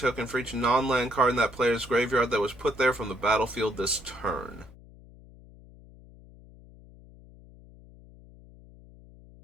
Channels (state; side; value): noise; left; hum, 22 dB below the sound